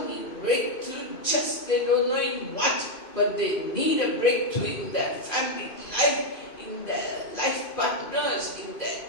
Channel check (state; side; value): late; right; 2.5 ms